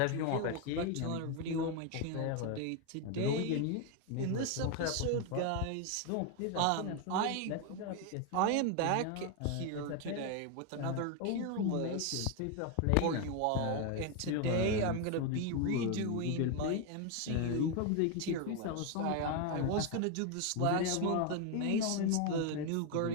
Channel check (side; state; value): both; different; correlation 0.01